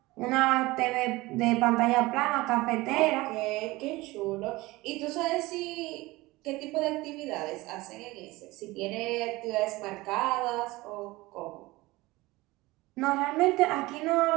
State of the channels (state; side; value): quieter; left; 20.5 dB